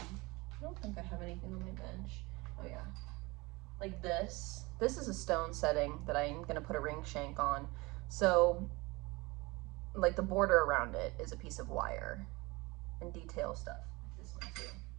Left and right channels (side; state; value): left; quieter; 24.0 dB